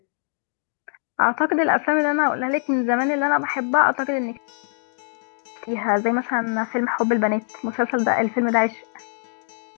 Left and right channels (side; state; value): right; silent; digital silence